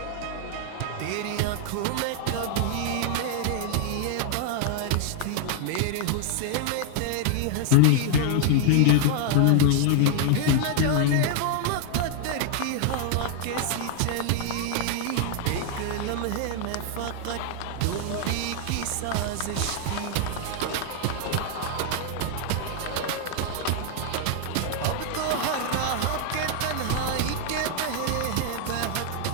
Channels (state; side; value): different; both; correlation 0.00